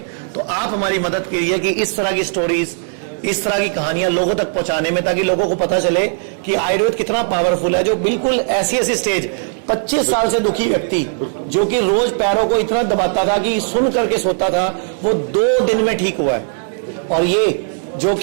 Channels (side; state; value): left; silent; 68 dB below the other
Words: तो आप हमारी मदद कीजिए कि इस तरह की स्टोरीज, इस तरह की कहानियां लोगों तक पहुंचाने में, ताकि लोगों को पता चले कि आयुर्वेद कितना पावरफुल है। जो बिल्कुल ऐसी स्टेज 25 साल से दुखी व्यक्ति जो कि रोज पैरों को इतना दबाता था कि सुन करके सोता था, वो 2 दिन में ठीक हुआ है। और ये जो